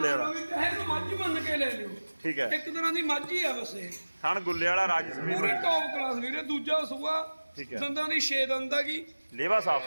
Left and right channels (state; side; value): inverted; both; correlation -1.00